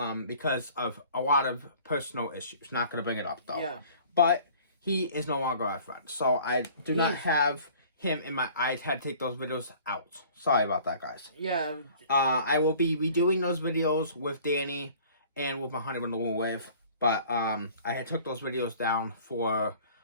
because of a lot of personal issues. Not gonna bring it up though. Yeah. But he is no longer our friend. So I do not have him in my eyes. Had to take those videos out. Sorry about that, guys. Yeah. I will be redoing those videos with Danny and with my Honey Bun the Wool Wave, but I had took those videos down for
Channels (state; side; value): inverted; both; correlation -0.50